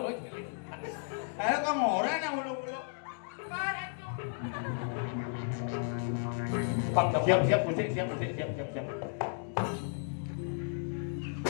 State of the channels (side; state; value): right; silent; digital silence